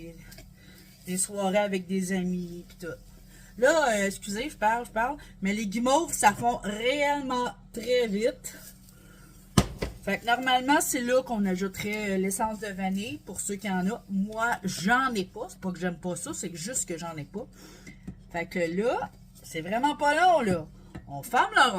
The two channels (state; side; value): identical; both; correlation 1.00